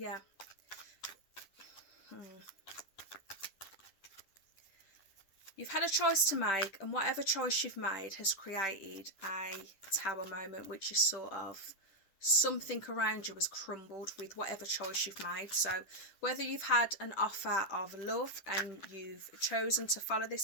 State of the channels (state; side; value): late; right; 10 ms